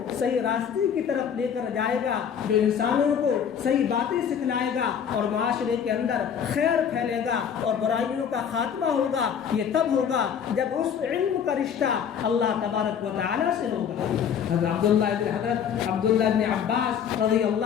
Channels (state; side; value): quieter; right; 7.9 dB